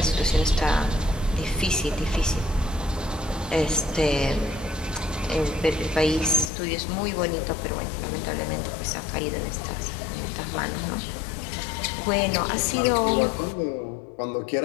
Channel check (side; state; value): right; drops out; at 6.5 s